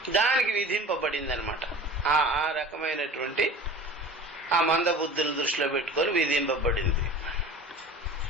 దానికి విధింపబడిందనమాట. ఆ రకమైనటువంటి ఆ మందబుద్ధులను దృష్టిలో పెట్టుకొని విధింపబడింది.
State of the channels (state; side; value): normal; both; correlation 0.39